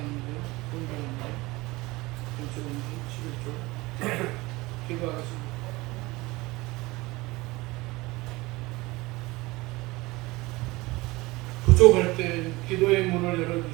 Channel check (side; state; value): left; quieter; 21.6 dB